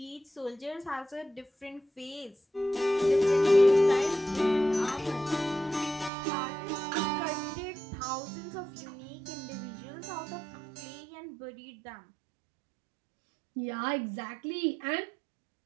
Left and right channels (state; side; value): drops out; left; at 6.1 s